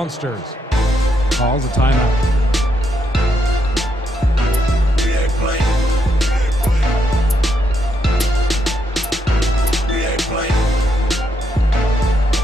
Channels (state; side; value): normal; both; correlation 0.78